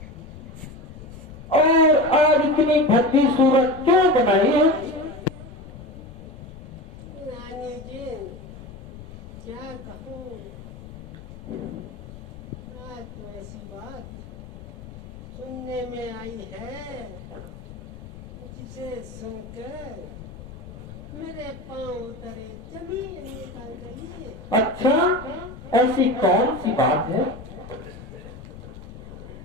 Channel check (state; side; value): noise; left; rumble, 15 dB below the sound